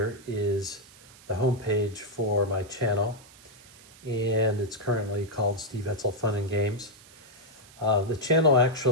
is the homepage for my channel, and it's currently called Steve Etzel Fun and Games. The channel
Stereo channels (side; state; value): right; noise; hiss, 23 dB below the sound